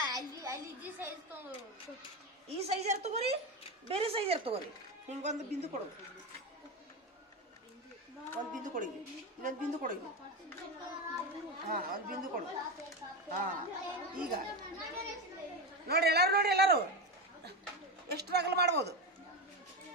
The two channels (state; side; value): normal; both; correlation 0.17